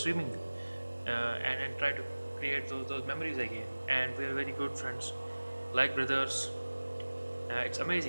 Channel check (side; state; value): both; inverted; correlation -1.00